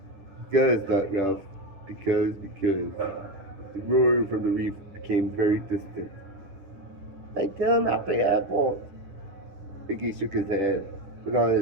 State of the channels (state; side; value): late; left; 10 ms